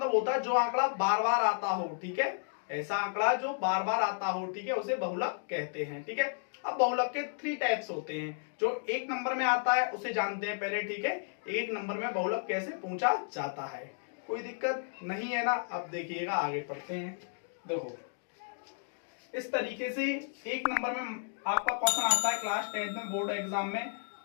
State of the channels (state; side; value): silent; right; digital silence